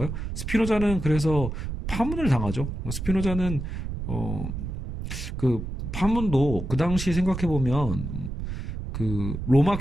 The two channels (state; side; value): noise; right; rumble, 5 dB below the sound